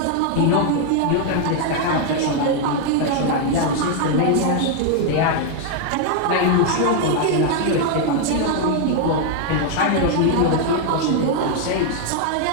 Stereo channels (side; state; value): both; different; correlation 0.00